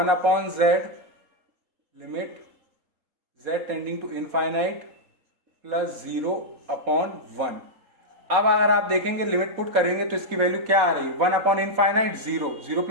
limit z tending to infinite plus 0/1। अब अगर आप देखेंगे लिमिट पुट करेंगे तो इसकी वैल्यू क्या आ रही है, 1/इनफाइनाइट 0, 0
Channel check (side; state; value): left; late; 3.8 ms